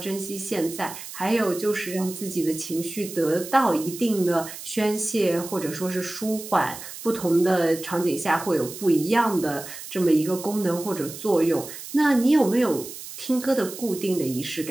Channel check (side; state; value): right; noise; hiss, 12 dB below the sound